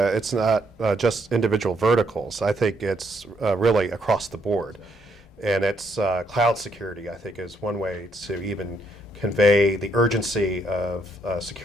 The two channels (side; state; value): both; normal; correlation 0.73